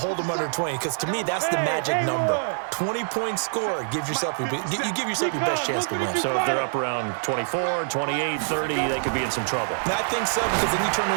them under 20. Because to me, that's the magic number. 20-point score gives yourself you give yourself your best chance to win. So if they're up around 24, 28, 30, they could be in some trouble. I think so, because then you turn it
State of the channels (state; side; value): silent; left; digital silence